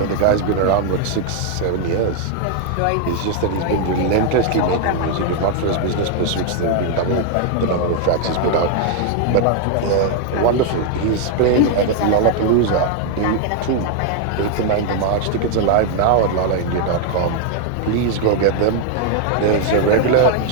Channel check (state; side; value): different; both; correlation 0.00